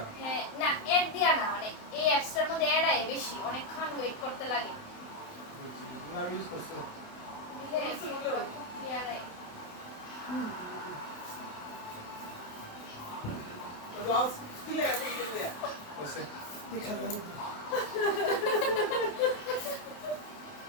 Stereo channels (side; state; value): right; late; 28 ms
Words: হ্যাঁ না অ্যাড দিয়া না মানে এই অ্যাপসটার মধ্যে অ্যাড আয় বেশি অনেকক্ষণ ওয়েট করতে লাগে আমি ইউজ করছি দিলে ফটো দিয়া আয় রস দিলে এখন দিলে হইছে দেখা যাবে